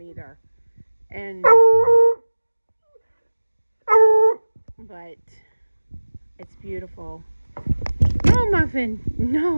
either. But it's beautiful. No, Muffin,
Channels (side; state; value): both; inverted; correlation -1.00